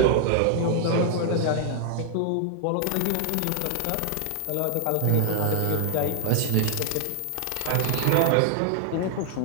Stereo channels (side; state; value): both; different; correlation 0.00